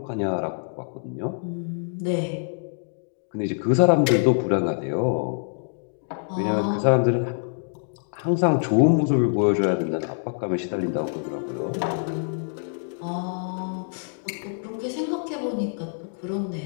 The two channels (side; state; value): right; silent; digital silence